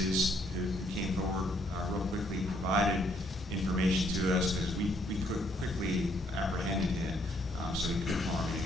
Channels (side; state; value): both; normal; correlation 0.68